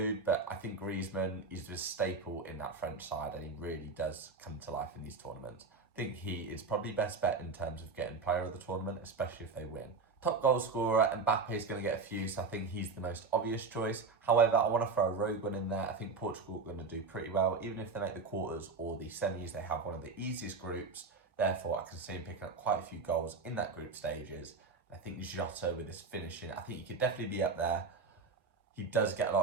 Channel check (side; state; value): left; quieter; 4.4 dB